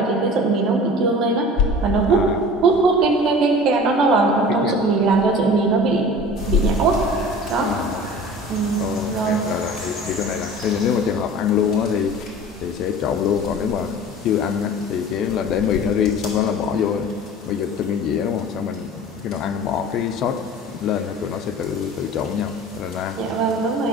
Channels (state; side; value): normal; both; correlation 0.40